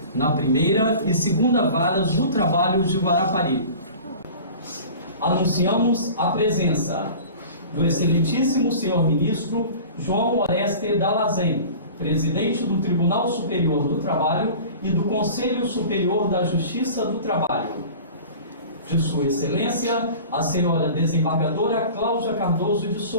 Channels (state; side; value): inverted; both; correlation -0.40